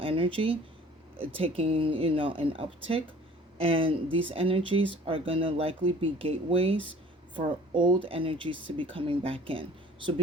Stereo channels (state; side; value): normal; both; correlation 0.49